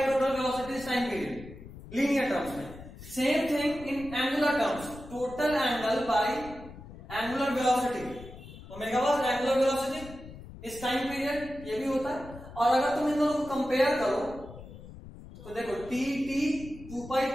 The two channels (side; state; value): left; noise; rumble, 16 dB below the sound